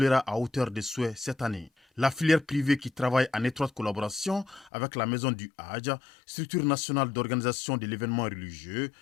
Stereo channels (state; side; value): drops out; right; at 4.7 s